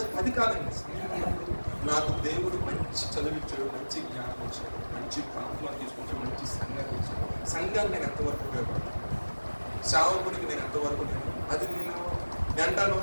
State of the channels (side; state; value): both; inverted; correlation -1.00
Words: అది కాదండి. నాకు దేవుడు మంచి చదివించాడు, మంచి జ్ఞానం ఇచ్చాడు, మంచి ప్రాంతంలో తీసుకొచ్చాడు, మంచి సంఘాన్ని ఇచ్చాడు. సంఘాన్ని నేను ఎంతవరకు ఉపయోగపడతాను, సేవకుడికి నేను ఎంతవరకు అది నేను అంటాను.